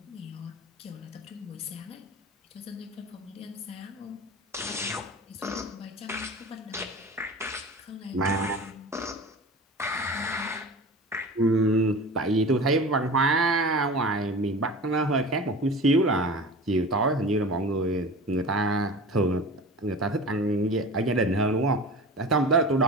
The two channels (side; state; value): both; normal; correlation 0.35